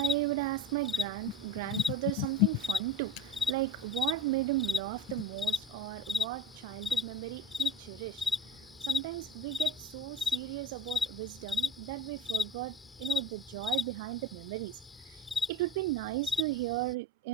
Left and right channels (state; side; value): normal; both; correlation 0.34